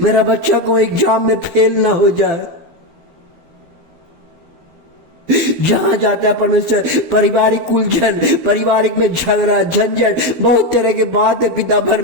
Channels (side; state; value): left; late; 12 ms